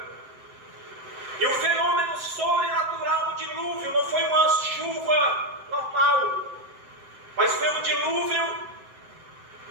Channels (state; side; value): late; left; 7.7 ms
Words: E o fenômeno sobrenatural do dilúvio não foi uma chuva normal, mas foi um dilúvio